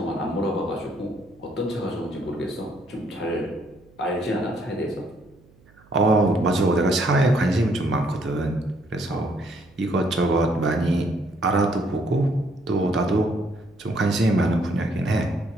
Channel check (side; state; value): right; noise; hum, 28 dB below the sound